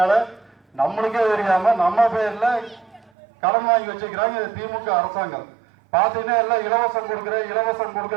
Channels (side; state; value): left; drops out; at 3.1 s